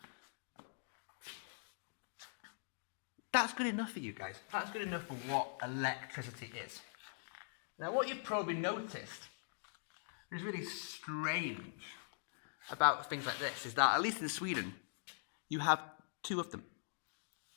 that's good enough for you guys. That's good enough for what electricity is. Now, what you've probably noticed is really strange about things like this is that, at least in Sweden, you have two of them.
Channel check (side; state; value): right; silent; digital silence